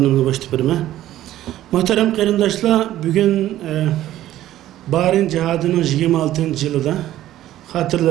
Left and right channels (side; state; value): left; quieter; 13.6 dB